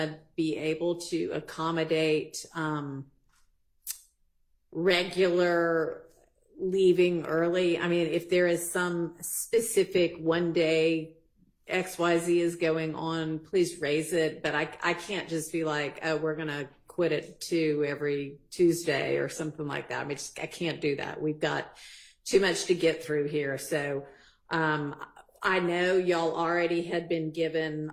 be able to accommodate regular leaving early. I mean, if there is some specific one day XYZ is going on, please raise it. But I can't just be like, oh, we're going to quit at 2 every Tuesday or something like that. I mean, I can't do that. We've got too much to get through here. So, I know y'all already had been given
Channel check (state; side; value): identical; both; correlation 1.00